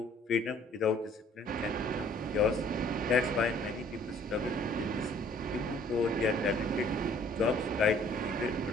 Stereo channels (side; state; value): both; normal; correlation 0.57